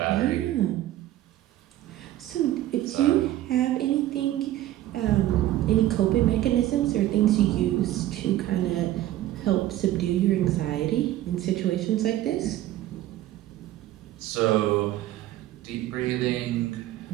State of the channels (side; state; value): left; quieter; 14.2 dB